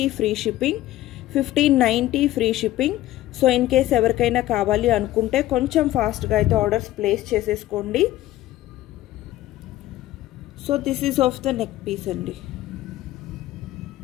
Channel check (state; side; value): quieter; right; 15.1 dB